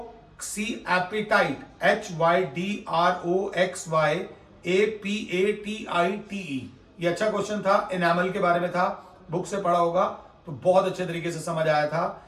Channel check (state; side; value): identical; both; correlation 1.00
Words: HYDROXYAPATITE। ये अच्छा क्वेश्चन था, एनामल के बारे में था, बुक से पढ़ा होगा तो बहुत अच्छे तरीके से समझ आया था।